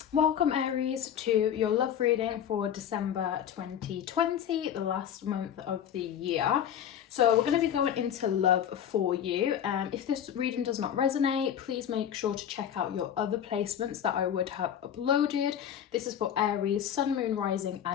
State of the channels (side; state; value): right; quieter; 9.5 dB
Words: Welcome Aries to your love reading for December 2020, the last month of the year. So we're going to be going into love for you. If this reading does not resonate, please make sure to check out your other placements that I would have uploaded. This is for Aries, Sun, Moon, Rising